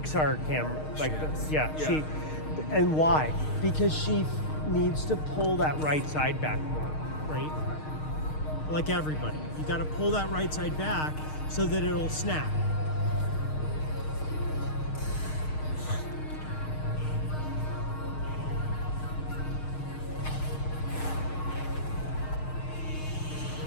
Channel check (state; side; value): late; right; 6.5 ms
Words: camera, like Yes. she, and why? Because she needs to pull that right side back more, right? Like everybody, you got to pull that right side back so that it'll snap.